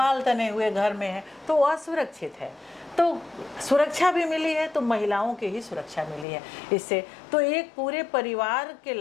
तने हुए घर में है तो असुरक्षित है। तो सुरक्षा भी मिली है तो महिलाओं की ही सुरक्षा मिली है इससे। तो एक पूरे परिवार के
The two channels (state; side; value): drops out; right; at 6.2 s